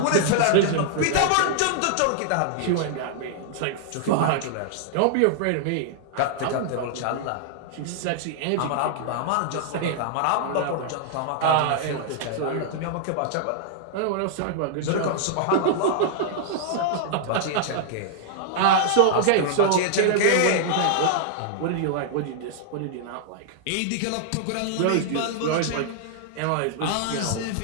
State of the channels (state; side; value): different; both; correlation -0.01